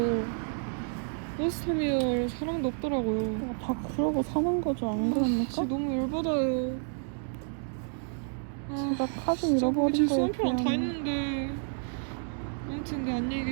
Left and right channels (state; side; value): silent; left; 58 dB below the other